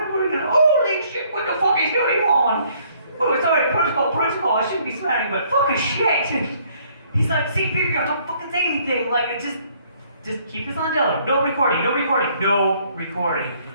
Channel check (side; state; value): both; inverted; correlation -0.63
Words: are we gonna, holy shit, what the fuck is going on? Oh, sorry, protocol, I shouldn't be swearing, but fucking shit. And he's like, C-3PO, don't fucking say anything. Like, just keep this on Dylan. No recording.